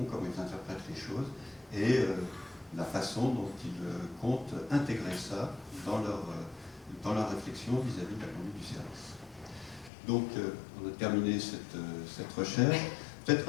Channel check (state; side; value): drops out; right; at 9.9 s